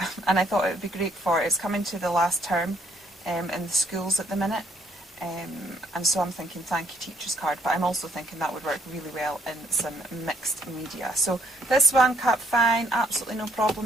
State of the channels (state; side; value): normal; both; correlation 0.67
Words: and I thought it would be great for it's coming to the last term in the schools at the minute. And so I'm thinking thank you teacher's card, but I'm also thinking that would work really well in some mixed media. So this one cut fine, absolutely no